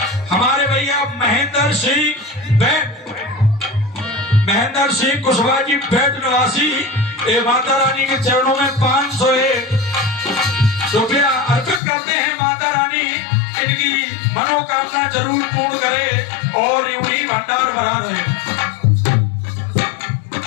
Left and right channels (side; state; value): right; drops out; at 11.8 s